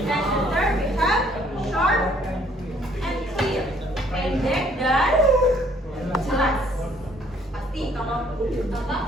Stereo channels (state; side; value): normal; both; correlation 0.63